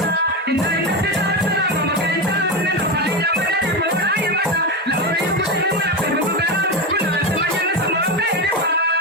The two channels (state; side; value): normal; both; correlation 0.14